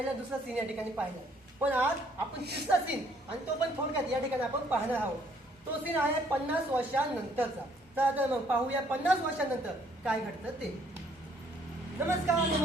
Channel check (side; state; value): both; normal; correlation 0.64